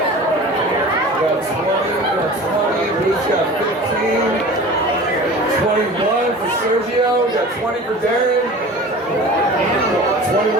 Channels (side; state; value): both; normal; correlation 0.39